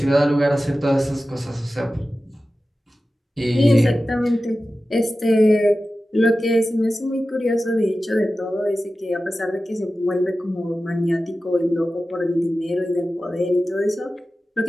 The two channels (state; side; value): normal; both; correlation 0.94